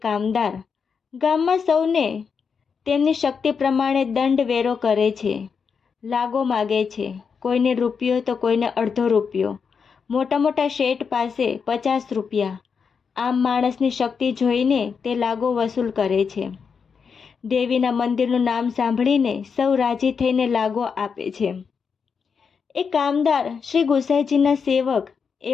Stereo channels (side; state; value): right; quieter; 6.0 dB